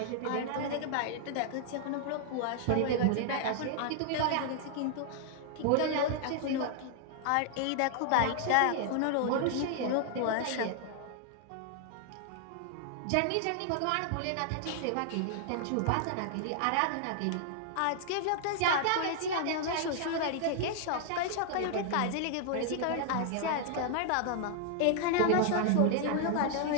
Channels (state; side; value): different; both; correlation 0.00